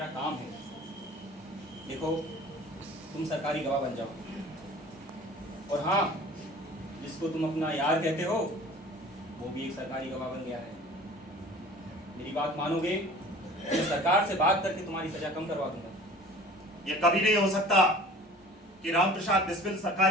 काम है। देखो, तुम सरकारी गवाह बन जाओ, और हाँ, जिसको तुम अपना यार कहते हो वो भी एक सरकारी गवाह बन गया है। मेरी बात मानोगे तो सरकार से बात करके तुम्हारी सजा कम करवा दूंगा। ये कभी नहीं हो सकता कि राम प्रसाद बिस्मिल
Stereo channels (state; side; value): normal; both; correlation 0.45